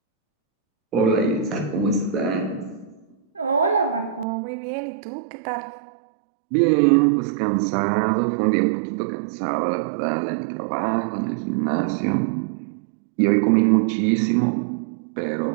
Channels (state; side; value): drops out; left; at 4.2 s